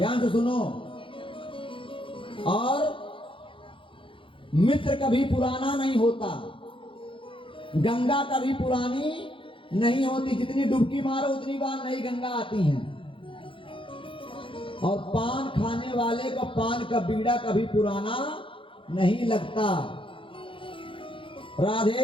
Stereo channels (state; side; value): late; right; 0.25 ms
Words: से सुनो। और मित्र कभी पुराना नहीं होता, गंगा कभी पुरानी नहीं होती। जितनी डुबकी मारो उतनी बार नई गंगा आती है। और पान खाने वाले को पान का बीड़ा कभी पुराना नहीं लगता।